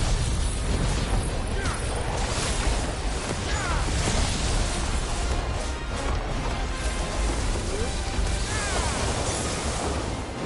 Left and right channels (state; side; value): identical; both; correlation 1.00